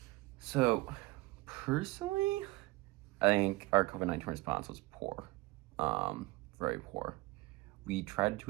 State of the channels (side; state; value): left; quieter; 20.8 dB